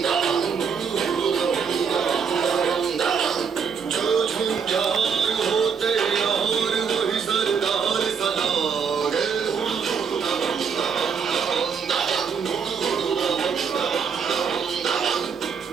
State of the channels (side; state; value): left; quieter; 6.3 dB